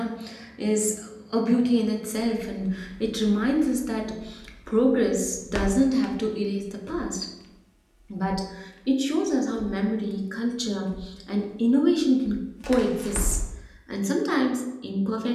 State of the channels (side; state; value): both; identical; correlation 1.00